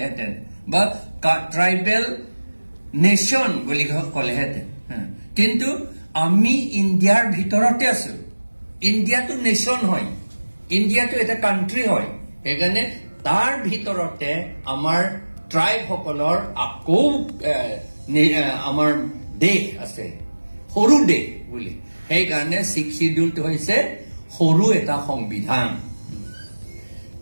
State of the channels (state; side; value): inverted; both; correlation -1.00